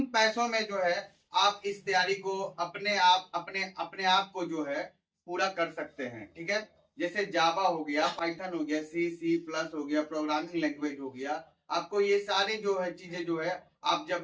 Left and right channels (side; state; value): both; identical; correlation 1.00